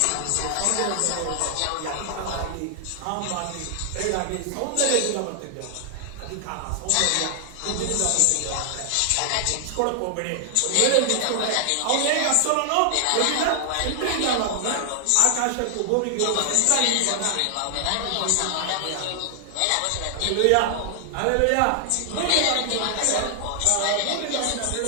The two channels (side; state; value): both; different; correlation 0.00